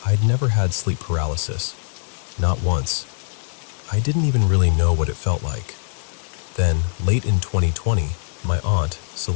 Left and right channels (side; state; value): right; silent; digital silence